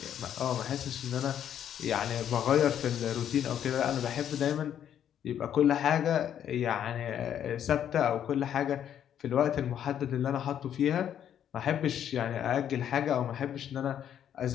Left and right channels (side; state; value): right; quieter; 9.7 dB